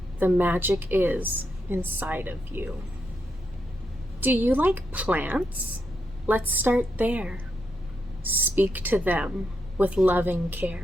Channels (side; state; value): both; normal; correlation 0.82